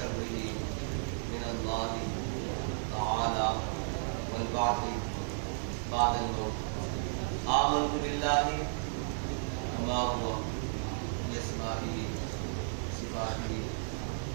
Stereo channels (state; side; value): silent; left; digital silence